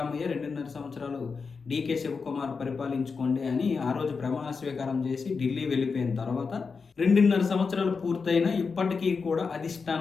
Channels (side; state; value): right; quieter; 5.0 dB